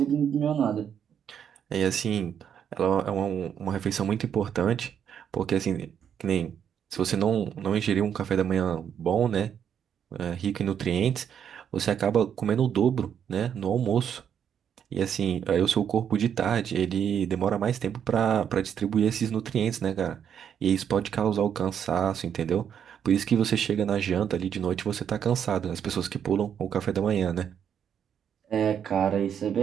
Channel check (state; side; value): quieter; left; 8.5 dB